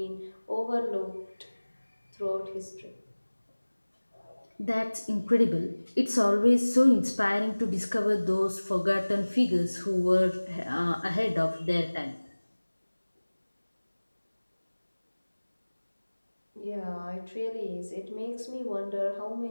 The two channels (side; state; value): both; inverted; correlation -1.00